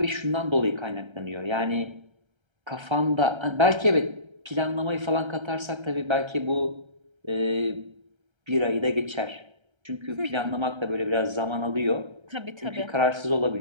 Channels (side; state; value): left; late; 1.3 ms